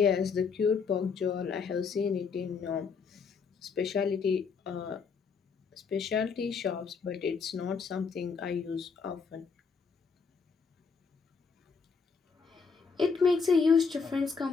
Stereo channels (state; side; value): quieter; right; 5.4 dB